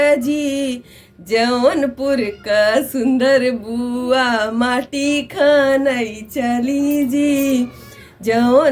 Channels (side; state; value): both; identical; correlation 1.00